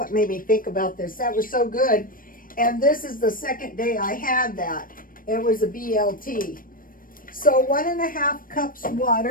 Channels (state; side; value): late; right; 0.41 ms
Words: made me think about this. That was so good. And this is the second day I had that. It was a BLT. So 1.5 cups